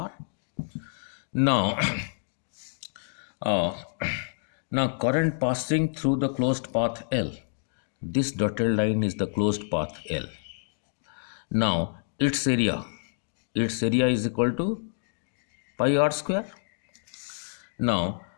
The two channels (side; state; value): right; silent; digital silence